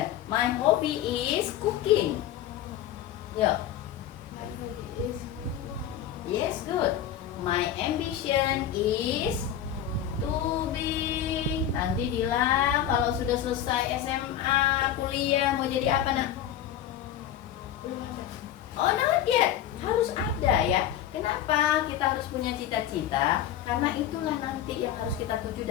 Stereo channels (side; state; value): right; quieter; 10.6 dB